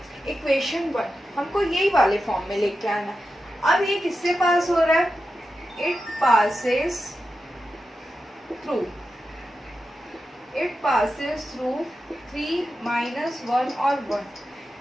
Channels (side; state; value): both; normal; correlation 0.90